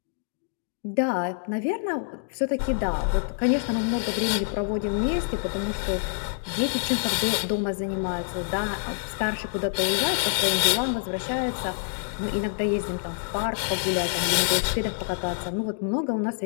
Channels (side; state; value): right; silent; digital silence